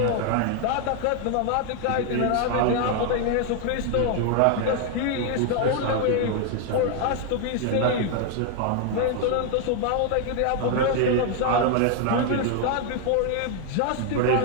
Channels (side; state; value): both; different; correlation 0.00